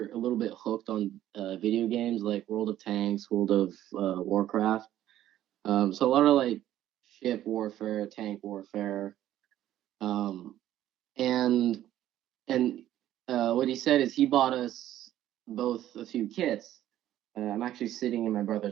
a little bit hooked on video games like World of Tanks, World of Warcraft. So a lot of like ship warfare, tank warfare, um, and and what he said is he bought us both a few kits. I'm actually sitting in my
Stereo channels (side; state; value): left; quieter; 12.7 dB